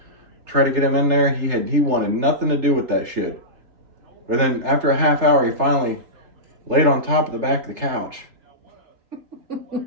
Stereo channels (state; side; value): late; left; 3.3 ms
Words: Try to get him in there. He wanted nothing to do with that shit. But then after a half hour, he finally laid on top of the back of the couch.